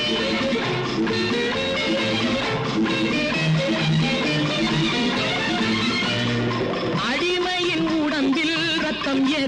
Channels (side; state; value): both; identical; correlation 1.00